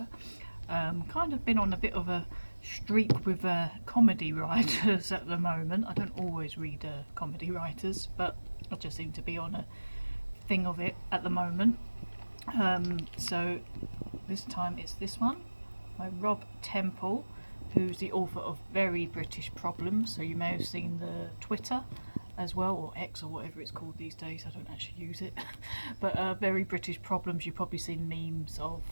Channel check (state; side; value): inverted; both; correlation -1.00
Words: Kind of been on a bit of a streak with comedy writers at the moment. I don't always read comedy writers, but I just seem to be on a thing of it at the moment. So this time it's this one by Rob Temple, who's the author of Very British Problems. So you may have seen the Twitter as well, or X or whatever it's called these days. I don't actually use it. But Very British Problems you've probably seen memes of,